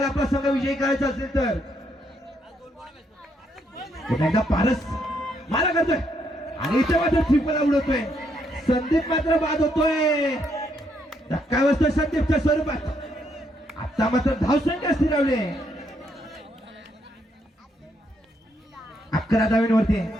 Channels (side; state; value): both; normal; correlation 0.75